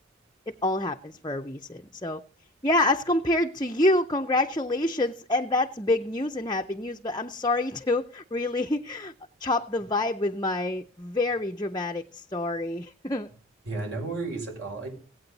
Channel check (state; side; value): normal; both; correlation 0.39